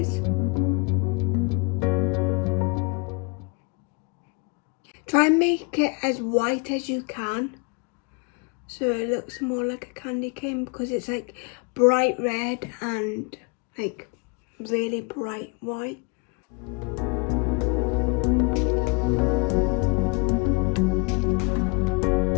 is. Try and make it as white as you can, so it looks more like a candy cane, because it's like bright red and like really bright white.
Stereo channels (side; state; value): right; quieter; 30.9 dB